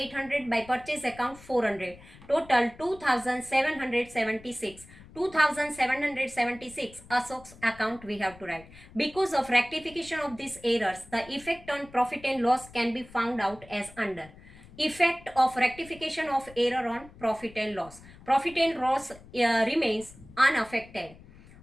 by purchase account 400. Total 2,776. 2,776 Ashok's account we have to write. Because of rectification of these errors, the effect on profit and loss can be found out as under. Effect of rectification of error on profit and loss. Profit and loss remains unaffected.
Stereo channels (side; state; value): left; noise; rumble, 21 dB below the sound